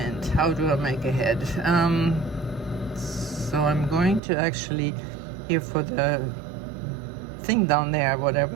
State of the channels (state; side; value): drops out; left; at 4.2 s